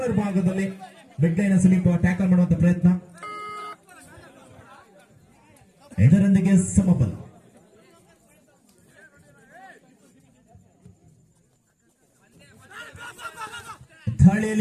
ಭಾಗದಲ್ಲಿ ಮಿಡ್ ಲೈನ್ ಸಮೀಪ ಟ್ಯಾಕಲ್ ಮಾಡುವಂತ ಪ್ರಯತ್ನ ಇದರೊಂದಿಗೆ ಸಮಬಲ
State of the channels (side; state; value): both; identical; correlation 1.00